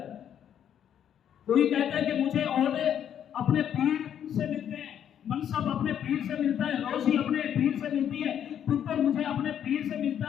کوئی کہتا ہے کہ مجھے عہدے اپنے پیر سے ملتے ہیں، منصب اپنے پیر سے ملتا ہے، روزی اپنے پیر سے ملتی ہے، پتر مجھے اپنے پیر سے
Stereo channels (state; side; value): quieter; right; 9.4 dB